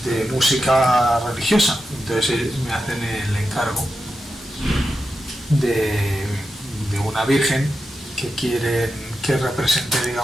música religiosa. Entonces me hacen el encargo de una virgen que quieren que represente,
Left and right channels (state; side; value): normal; both; correlation 0.89